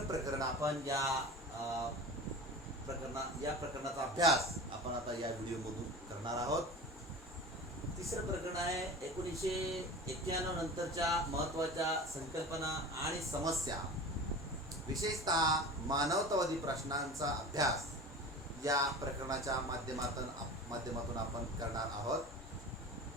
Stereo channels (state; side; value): normal; both; correlation 0.34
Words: प्रकरण आपण या प्रकरणाचा अभ्यास आपण आता या व्हिडिओमधून करणार आहोत। तिसरं प्रकरण आहे 1991 नंतरच्या महत्त्वाच्या संकल्पना आणि समस्या, विशेषतः मानवतावादी प्रश्नांचा अभ्यास या प्रकरणाच्या माध्यमातून आपण करणार आहोत।